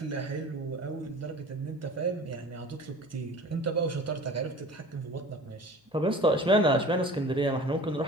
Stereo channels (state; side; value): normal; both; correlation 0.42